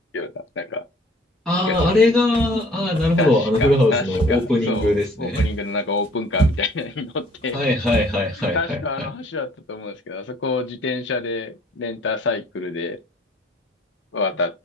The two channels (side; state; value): both; normal; correlation 0.56